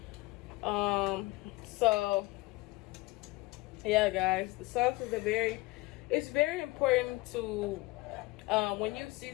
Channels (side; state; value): right; quieter; 21.2 dB